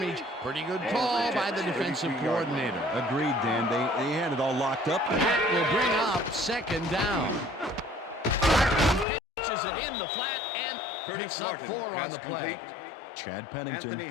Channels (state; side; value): drops out; right; at 9.1 s